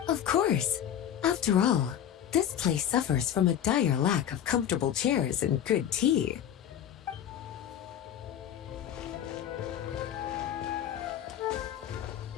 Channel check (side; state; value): right; quieter; 10.0 dB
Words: Of course. After all, this place suffers from a dire lack of comfortable chairs and good tea.